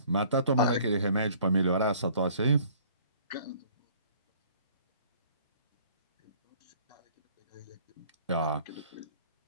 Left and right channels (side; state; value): both; inverted; correlation -0.54